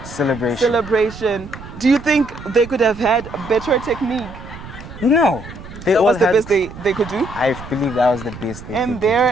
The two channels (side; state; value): right; noise; rumble, 14 dB below the sound